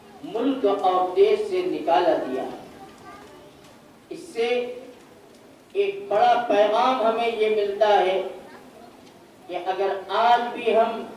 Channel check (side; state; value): both; identical; correlation 1.00